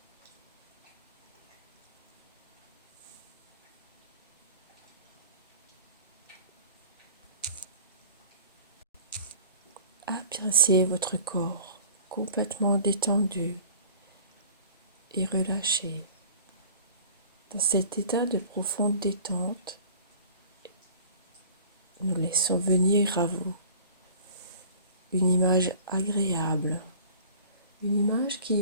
Appréciez votre corps complètement détendu et relâché. Dans cet état de profonde détente, nous laissons venir à vous une image agréable, une image qui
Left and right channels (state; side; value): inverted; both; correlation -0.45